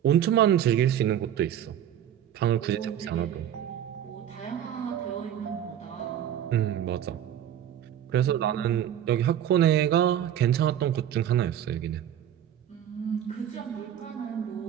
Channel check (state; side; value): quieter; left; 10.4 dB